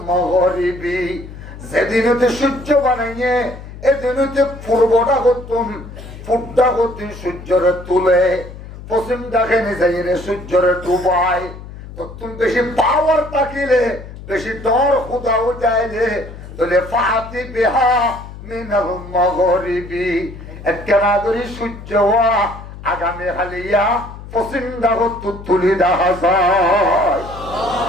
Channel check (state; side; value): noise; left; hum, 14 dB below the sound